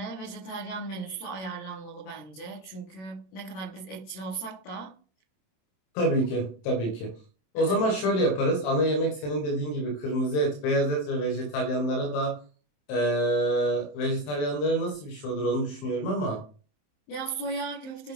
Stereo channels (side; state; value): right; late; 27 ms